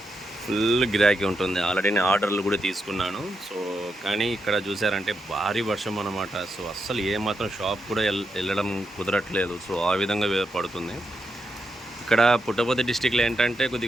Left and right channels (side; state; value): both; normal; correlation 0.84